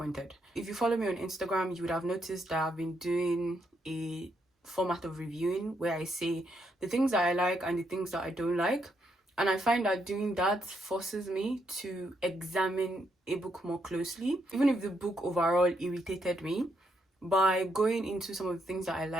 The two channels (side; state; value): both; normal; correlation 0.77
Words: If you follow me on Instagram, you would have noticed that I've been doing a format of reviewing where I say the things that I like and the things that I don't like. And I find that doing that forces me to examine a book more closely. Even if the book overall irritated me, by going into some of the things that I